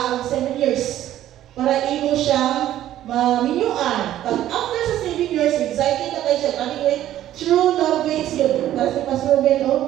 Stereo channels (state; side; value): quieter; left; 12.7 dB